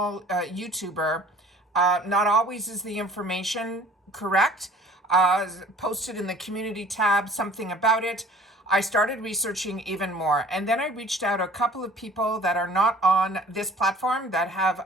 YouTuber. Not always is the information correct. Posted in the community tab something about it. I started researching even more, and then I reached out to a couple of people that are not on this platform that have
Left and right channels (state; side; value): normal; both; correlation 0.50